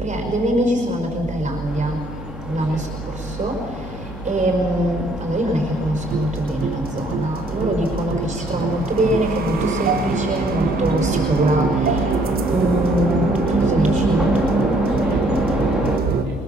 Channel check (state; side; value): noise; right; hum, 13 dB below the sound